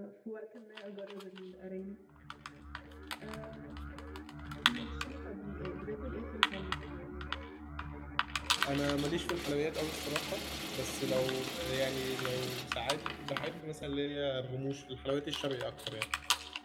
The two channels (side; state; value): both; identical; correlation 1.00